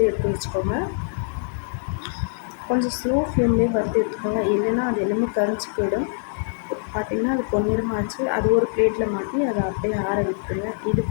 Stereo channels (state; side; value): silent; right; 58 dB below the other